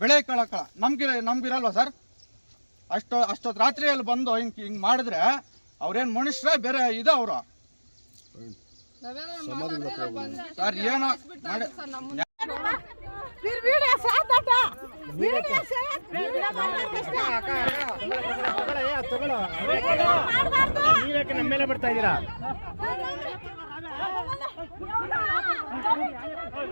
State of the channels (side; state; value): both; inverted; correlation -1.00